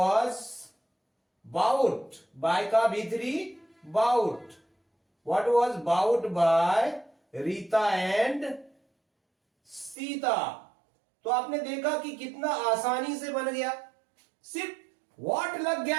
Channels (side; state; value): left; drops out; at 10.0 s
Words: बाउट, बाय का भीतरी bought, what was bought by Rita and Sita. तो आपने देखा कि कितना आसानी से बन गया, सिर्फ व्हाट लग